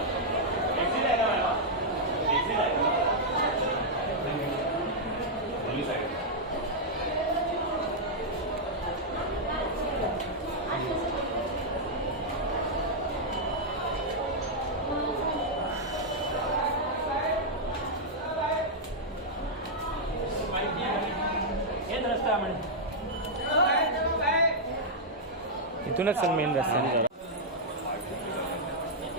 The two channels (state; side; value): normal; both; correlation -0.05